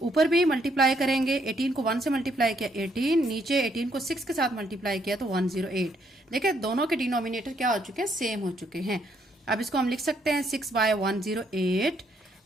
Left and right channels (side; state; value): both; normal; correlation 0.71